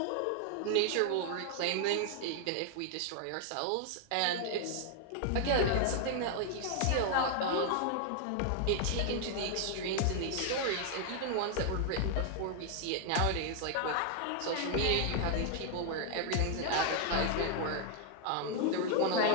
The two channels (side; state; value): both; different; correlation 0.00